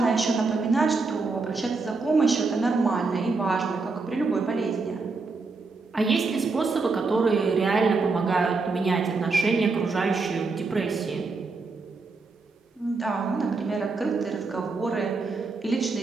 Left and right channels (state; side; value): quieter; left; 4.0 dB